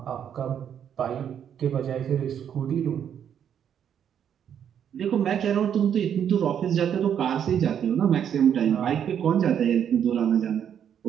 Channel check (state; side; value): quieter; left; 8.8 dB